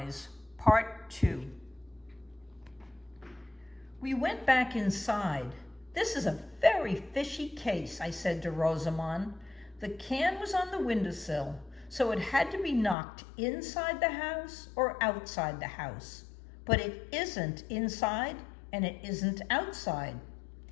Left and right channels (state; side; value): drops out; right; at 13.0 s